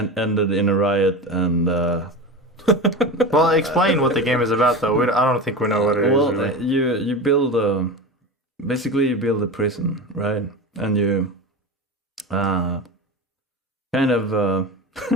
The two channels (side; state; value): both; normal; correlation 0.26